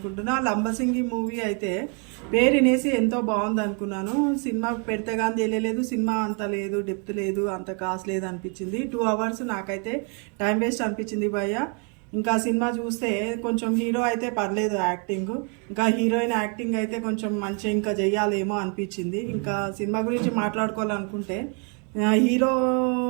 లంబసింగి మూవీ అయితే పేరు వినేసి ఎంతో బాగుంది అనుకున్నాను. సినిమా పెడితే కానీ తెలియలేదు, సినిమా అంత లేదు, డెప్త్ లేదు, అంత కాస్ట్ లేదు అనిపించింది. 2 hours నాకైతే టైం వేస్ట్ అనిపించింది భయ్య. ఇంకా సినిమా చూస్తే కొంచెం హీరో అయితే పర్లేదు యాక్టింగ్, ఇంకా హీరోయిన్ యాక్టింగ్ అయితే కొంచెం మంచిగా ఇంకా చెయ్యాలేమో అనిపించింది. ఇంకా సినిమా గురించి మాట్లాడుకోవాలనుకుంటే హీరో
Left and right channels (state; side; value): quieter; left; 37.3 dB